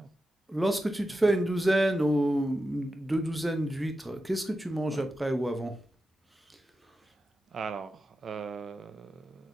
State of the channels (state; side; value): normal; both; correlation 0.90